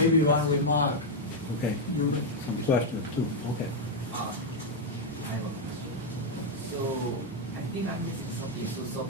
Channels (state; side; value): normal; both; correlation 0.00